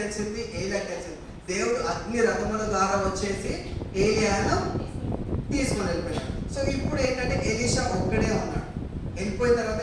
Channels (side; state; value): both; identical; correlation 1.00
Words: ఏలియాకి తెలిసింది. దేవుడు అగ్ని రథముల ద్వారా వచ్చేసి ఏలియాను తీసుకొని వెళ్ళిపోయాడు. సో ఇప్పుడు ఏంటంటే ఎలీషా ఒక్కడే ఉన్నాడు. వెళ్ళిపోయిన తర్వాత